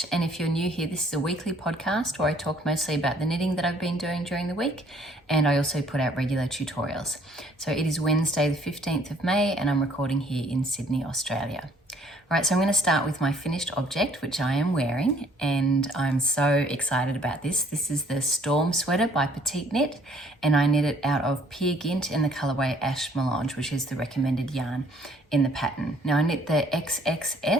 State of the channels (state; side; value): normal; both; correlation 0.61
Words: and if you're new here, this is a weekly podcast where I talk mostly about the knitting that I've been doing during the week, and I also put out regular tutorials. So it is Wednesday the 15th of May and I'm recording here in Sydney, Australia. All right, so I'm going to start with my finished object, which I am wearing, and I'm so excited about this. This is the Storm Sweater by Petite Knit, and I knit it out of pure Gynt in the colourway Ash Melange, which is the recommended yarn in the pattern. Now I knit the